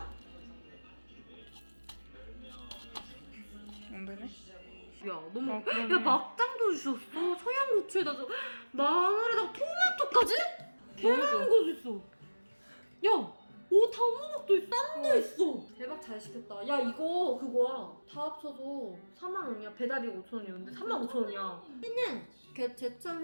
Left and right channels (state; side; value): inverted; both; correlation -1.00